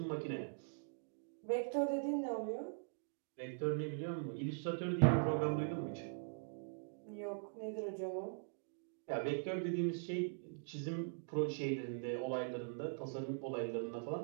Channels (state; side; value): silent; left; digital silence